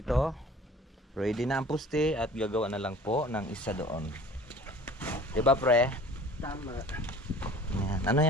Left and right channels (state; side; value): normal; both; correlation 0.45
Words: ready na ang puste at gagawa na lang po ng isa doon. Diba pre? Tama. Ayan. Ano